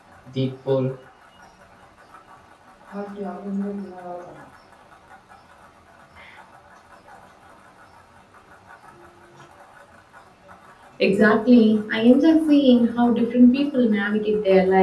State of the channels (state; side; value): identical; both; correlation 1.00